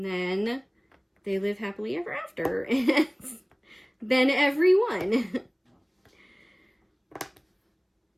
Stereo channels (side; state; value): both; identical; correlation 1.00